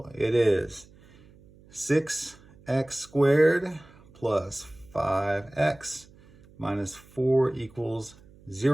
It is 6x squared plus 5x minus 4 equals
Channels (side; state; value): right; noise; hum, 26 dB below the sound